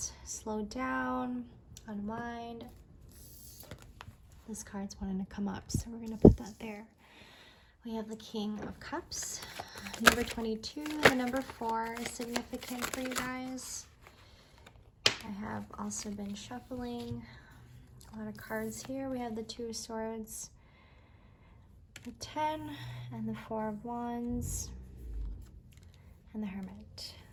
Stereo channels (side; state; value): both; identical; correlation 1.00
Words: slow down, unwind. This card's wanting to come up, so we're gonna put that there. We have the King of Cups, number 22. The number 4 is significant for you guys. I have also been shuffling a lot of cards here. We have the 2 of Swords, the 10, and the 4 of Wands, and the Hermit.